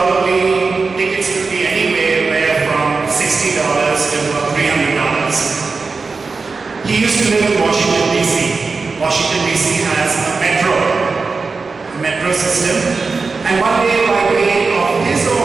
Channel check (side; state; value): left; quieter; 4.3 dB